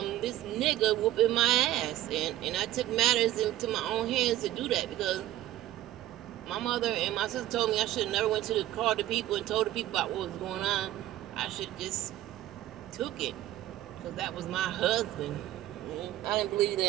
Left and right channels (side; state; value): left; quieter; 14.1 dB